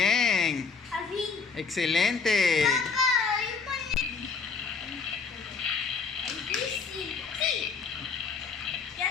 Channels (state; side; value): quieter; right; 5.2 dB